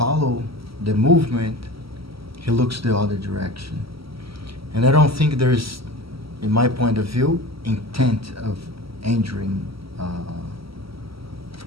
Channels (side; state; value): left; late; 0.75 ms